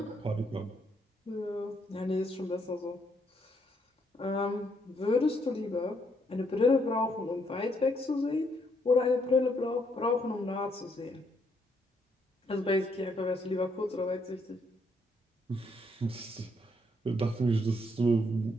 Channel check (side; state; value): both; normal; correlation 0.73